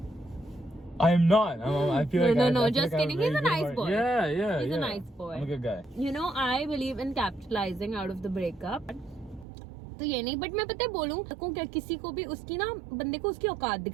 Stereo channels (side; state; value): left; drops out; at 9.5 s